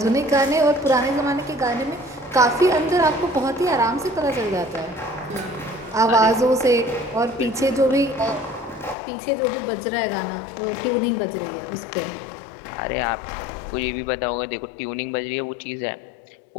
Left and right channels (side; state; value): right; drops out; at 9.0 s